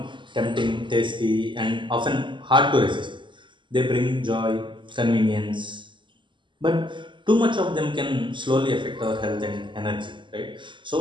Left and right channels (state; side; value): late; left; 0.24 ms